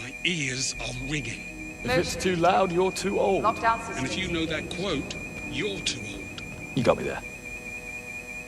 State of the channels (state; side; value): identical; both; correlation 1.00